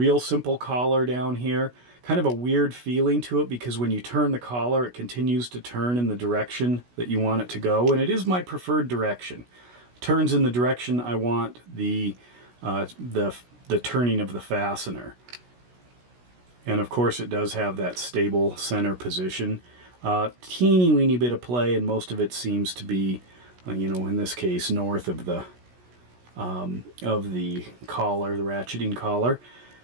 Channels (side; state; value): left; late; 16 ms